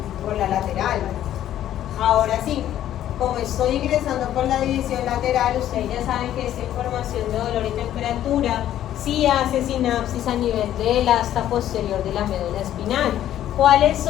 Por la lateral. Ahora sí, como estoy ingresando por la división lateral, ustedes ya saben que esta información de dolor y temperatura sí hace sinapsis a nivel del asta posterior de la médula espinal. ¿Cuáles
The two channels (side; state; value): right; quieter; 11.9 dB